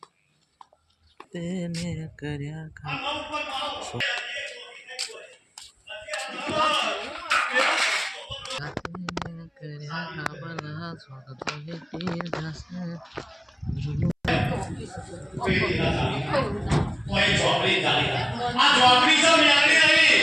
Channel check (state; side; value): identical; both; correlation 1.00